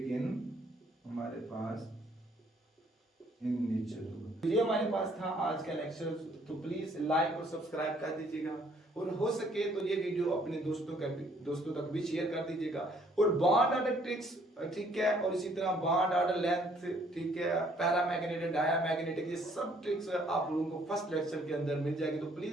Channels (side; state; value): both; normal; correlation 0.63